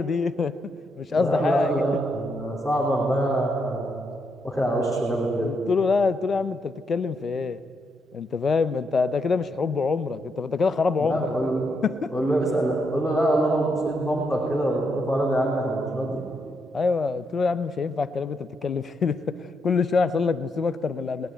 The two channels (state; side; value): normal; both; correlation 0.79